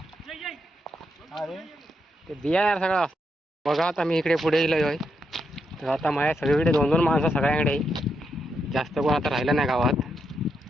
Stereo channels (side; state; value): both; normal; correlation 0.81